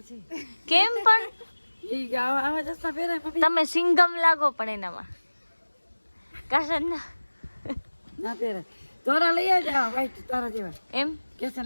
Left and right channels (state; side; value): inverted; both; correlation -1.00